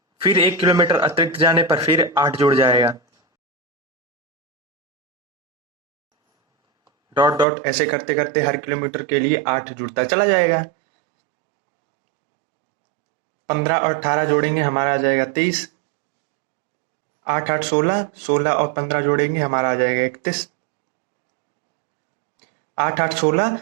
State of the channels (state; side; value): drops out; left; at 7.5 s